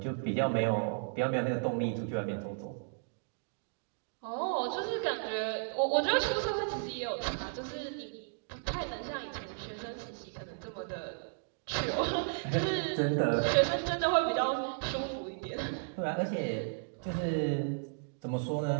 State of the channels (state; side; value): silent; left; digital silence